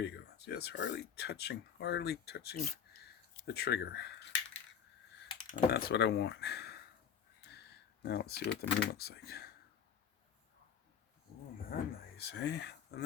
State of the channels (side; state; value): right; quieter; 7.7 dB